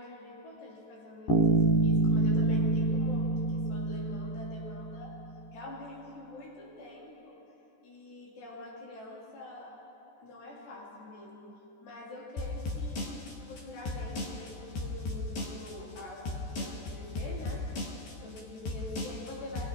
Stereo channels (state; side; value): late; right; 14 ms